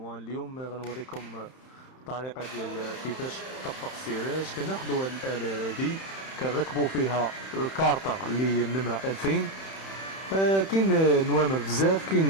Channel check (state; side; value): late; right; 31 ms